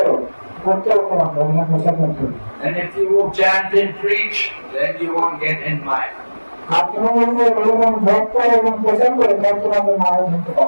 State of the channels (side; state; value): both; inverted; correlation -1.00